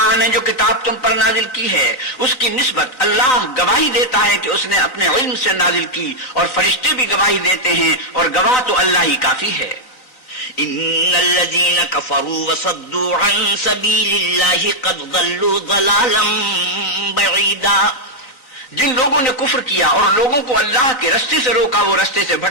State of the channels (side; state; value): right; late; 4.1 ms